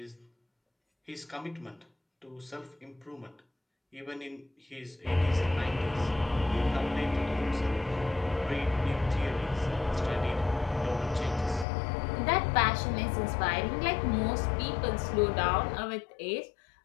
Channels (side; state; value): right; drops out; at 11.7 s